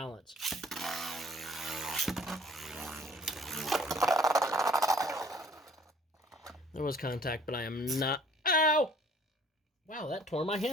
There was contact, but I am not... Ow! Wow, that tore my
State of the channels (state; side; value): normal; both; correlation 0.54